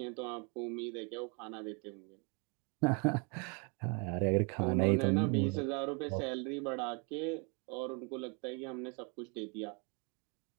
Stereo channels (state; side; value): quieter; left; 34.4 dB